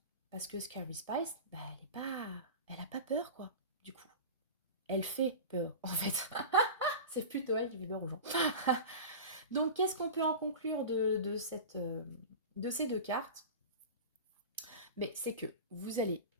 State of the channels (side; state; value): both; inverted; correlation -0.30